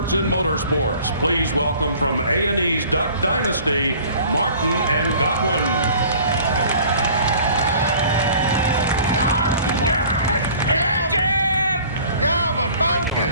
in motorsports. Please welcome from A&E's Duck Dynasty, Martin and Godwin. Godwin,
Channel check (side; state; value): both; inverted; correlation -0.49